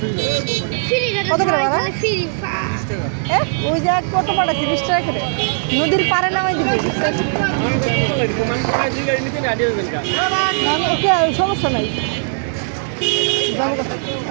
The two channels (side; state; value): left; silent; digital silence